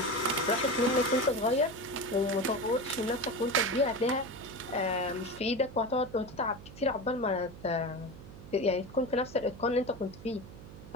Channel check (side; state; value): right; noise; hum, 16 dB below the sound